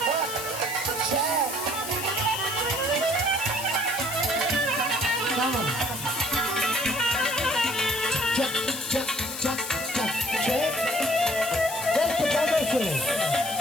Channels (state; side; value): noise; left; hiss, 8 dB below the sound